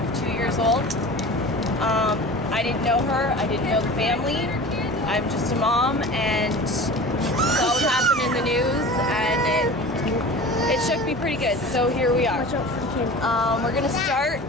2 years old. I didn't know her. I didn't know the family. I'm just a mom, and saw what happened in the news, and it shook me pretty good. So here we are. We're gonna start.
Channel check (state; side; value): noise; right; hum, 15 dB below the sound